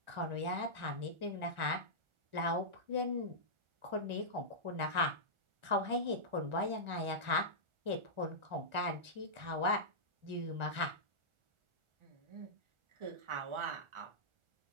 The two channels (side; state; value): left; late; 1.4 ms